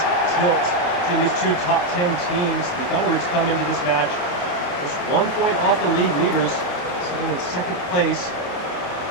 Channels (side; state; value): right; late; 28 ms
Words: tilt between these two top 10 teams. The Thunderbirds come into this match just 1 point off the league leaders, sitting in second place